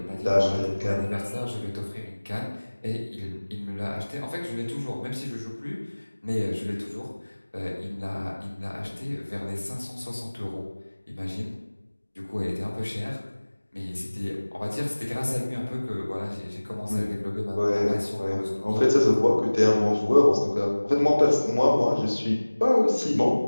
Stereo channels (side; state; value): both; inverted; correlation -1.00